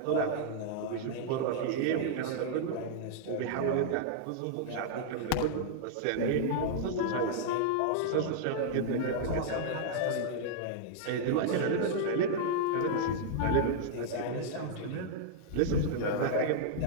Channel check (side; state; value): both; different; correlation -0.02